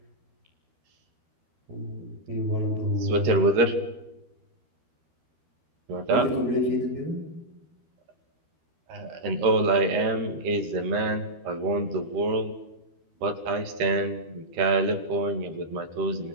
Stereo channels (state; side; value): late; left; 13 ms